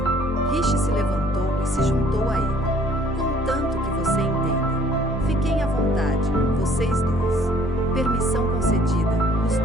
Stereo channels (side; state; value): both; normal; correlation 0.59